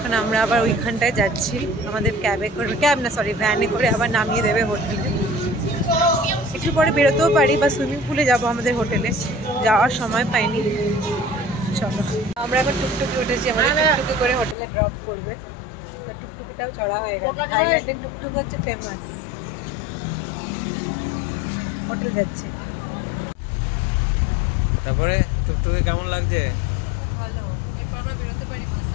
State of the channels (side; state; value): right; drops out; at 14.6 s